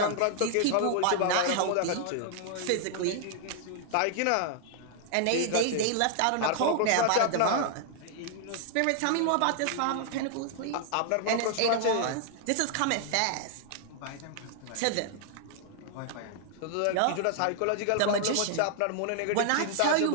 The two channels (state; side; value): different; both; correlation 0.00